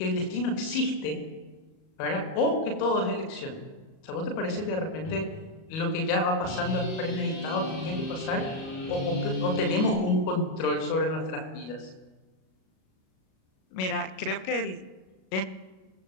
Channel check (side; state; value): right; late; 37 ms